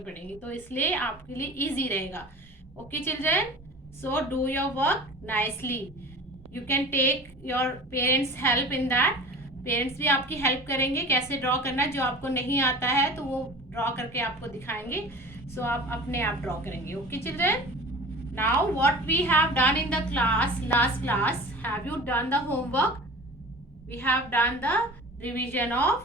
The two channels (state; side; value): normal; both; correlation 0.38